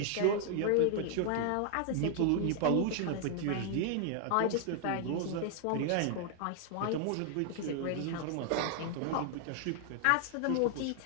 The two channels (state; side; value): different; both; correlation 0.00